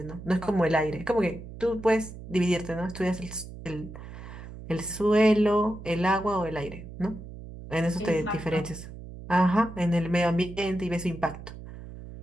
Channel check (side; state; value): right; noise; hum, 13 dB below the sound